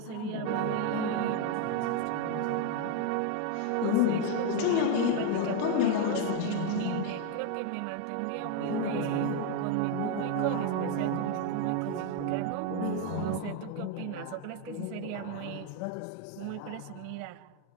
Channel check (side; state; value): both; different; correlation 0.01